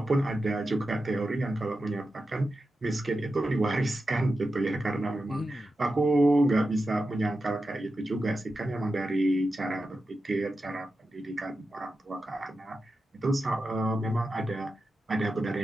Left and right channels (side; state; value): both; normal; correlation 0.91